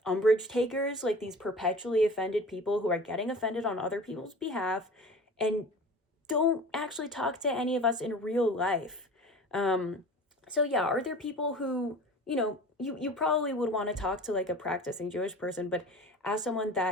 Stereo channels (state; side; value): normal; both; correlation 0.39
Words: umbrage takers, like these perpetually offended people who are getting offended on other people's behalf and don't actually talk to any of us in real life. So yeah, are there people who, you know, you probably would want to talk to, like, a practicing Jewish person, but as someone